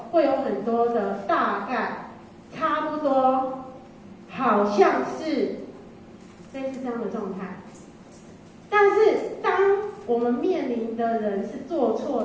会有很多的大概，差不多，好像是类似这样的状态。但是当我们面临的人是做错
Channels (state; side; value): identical; both; correlation 1.00